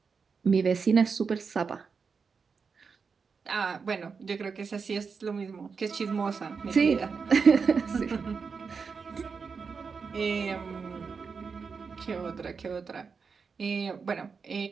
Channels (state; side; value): quieter; left; 5.4 dB